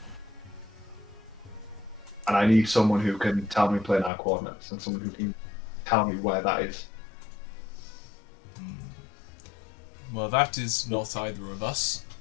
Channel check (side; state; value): right; drops out; at 4.1 s